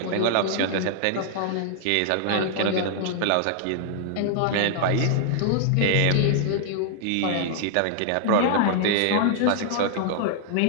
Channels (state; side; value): different; both; correlation -0.01